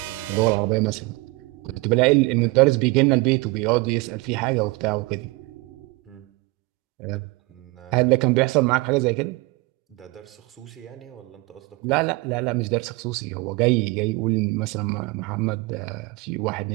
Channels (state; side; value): quieter; left; 24.3 dB